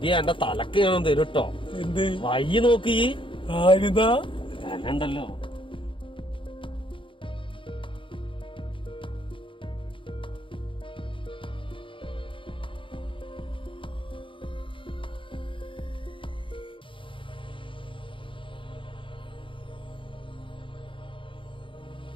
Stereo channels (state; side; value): late; right; 0.25 ms